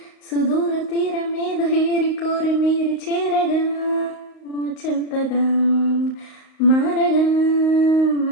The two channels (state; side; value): late; right; 38 ms